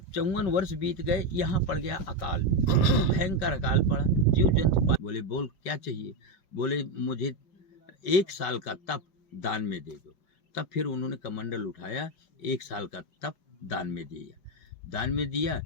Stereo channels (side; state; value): right; late; 5.3 ms